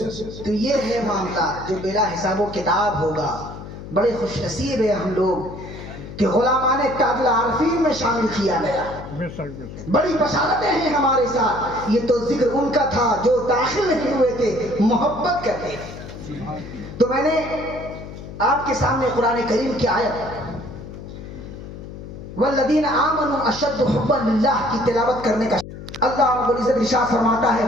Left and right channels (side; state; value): left; noise; hum, 12 dB below the sound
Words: تو یہ ہے معاملہ جو بلا حساب و کتاب ہوگا. بڑے خوش نصیب ہیں ہم لوگ کہ غلامان تاج العارفین میں شامل کیا گیا. بڑی بشارتیں ہیں ہمارے ساتھ. یہ تو ذکر ان کا تھا جو داخل نہیں ہوئے تھے, محبت کرتے تھے. تو میں نے آپ کے سامنے قرآن کریم کی آیت والذین آمنوا اشد حبا للہ کی تلاوت کرنے کا اللہ رب العزت ارشاد فرماتا ہے